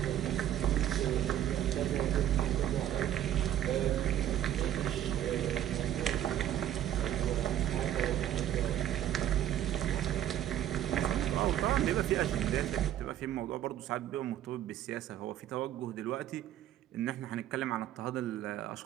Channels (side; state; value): left; quieter; 11.7 dB